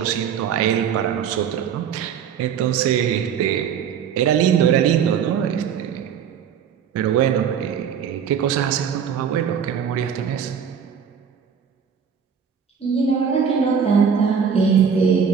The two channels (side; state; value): left; quieter; 7.5 dB